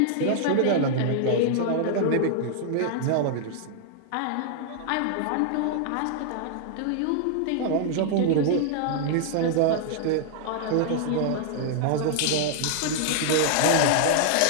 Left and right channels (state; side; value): different; both; correlation -0.01